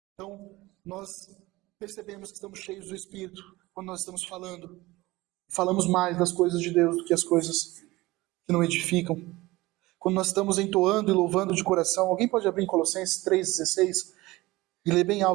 Então, nós percebemos que estamos cheios do Espírito quando nós estamos falando. Falamos mais das coisas de Deus do que as coisas que não edificam. Quando nós estamos entoando e louvando de coração. Alguém pode abrir em Colossenses 3,16 e ler bem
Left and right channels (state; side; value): quieter; left; 19.9 dB